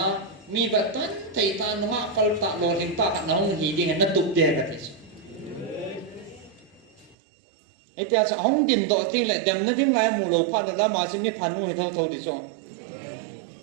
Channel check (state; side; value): drops out; left; at 7.2 s